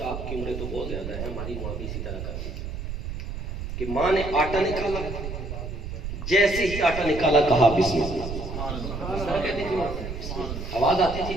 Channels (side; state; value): right; noise; rumble, 6 dB below the sound